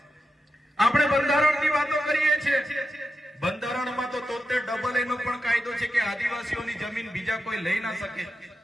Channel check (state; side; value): normal; both; correlation 0.88